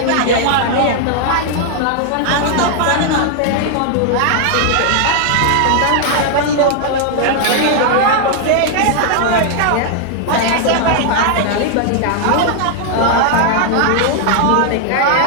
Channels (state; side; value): different; both; correlation 0.00